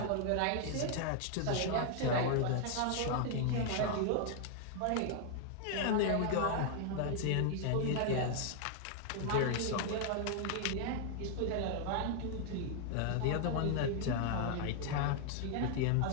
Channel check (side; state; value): both; different; correlation 0.00